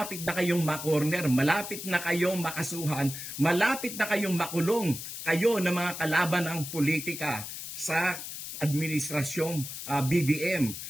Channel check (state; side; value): noise; left; hiss, 8 dB below the sound